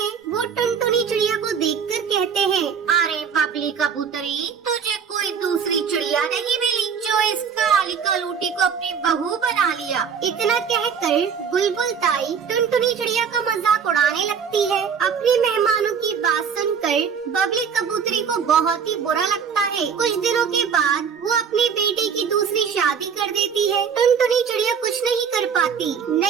वो टुनटुनी चिड़िया को देखकर कहते हैं, अरे बबली कबूतरी, तुझे कोई दूसरी चिड़िया नहीं मिली जो इस काली कलूटी को अपनी बहू बना लिया। इतना कहकर बुलबुल ताई टुनटुनी चिड़िया का मजाक उड़ाने लगती है। अपने मेहमानों की बात सुनकर बबली कबूतरी को बहुत ही बुरा लगता है। कुछ दिनों के बाद वो अपने बेटे की दूसरी शादी कर देती है। टुनटुनी चिड़िया कुछ नहीं कर पाती।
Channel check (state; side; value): quieter; left; 6.8 dB